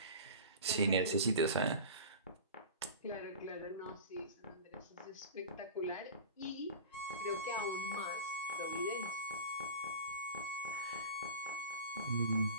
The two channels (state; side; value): inverted; both; correlation -0.33